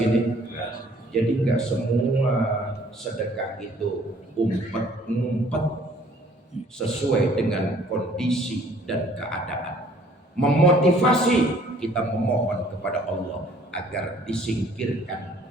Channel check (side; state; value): both; normal; correlation 0.58